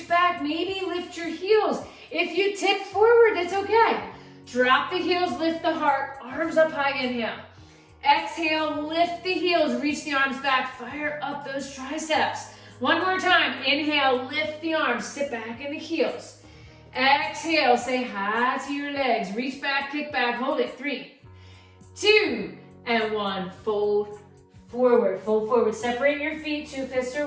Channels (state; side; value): identical; both; correlation 1.00